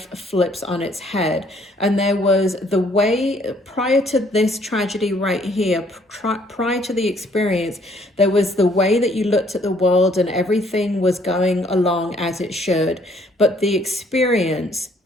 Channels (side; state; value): both; normal; correlation 0.63